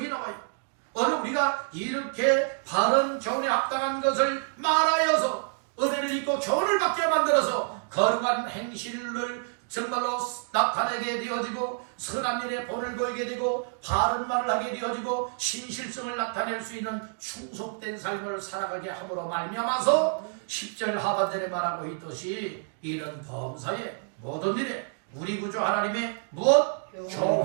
나와요. 오늘 우리가 이렇게 바른 교훈에 합당한 것을 말하여서 은혜를 입고 교훈을 받게 만들어서 거룩한 행실을 정말로 나타내게 되어지고 선한 일에 본을 보이게 되고 바른 말을 하게 되어지고 신실성을 나타낼 수 있는 충속된 삶을 살아가게 함으로 말미암아서 10절 하반절에 말하고 있듯이 이런 범사의 모든 일에 우리 구주 하나님의 무엇?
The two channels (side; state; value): left; silent; 59 dB below the other